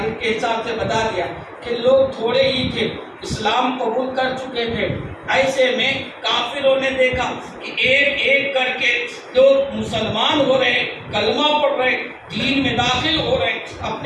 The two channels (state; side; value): identical; both; correlation 1.00